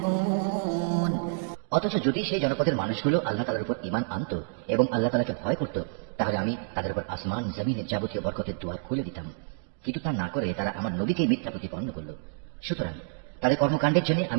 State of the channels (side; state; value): left; silent; digital silence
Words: অথচ যদি সেই জনপদের মানুষগুলো আল্লাহ তাআলার উপর ঈমান আনত এবং আল্লাহ তাআলাকে ভয় করত, তাহলে আমি তাদের উপর আসমান জমিনের যাবতীয় বরকতের দুয়ার খুলে দিতাম। কিন্তু তা না করে তারা আমার নবীকে মিথ্যা প্রতিপন্ন করল। সুতরাং তাদের কর্মকাণ্ডের জন্য